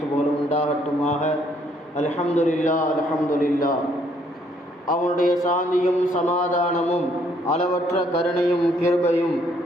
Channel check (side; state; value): both; normal; correlation 0.67